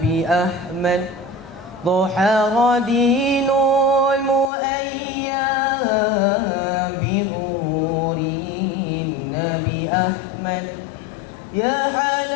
أحمد ظهر دين المؤيام بظهور النبي أحمد يا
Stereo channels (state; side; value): drops out; right; at 4.5 s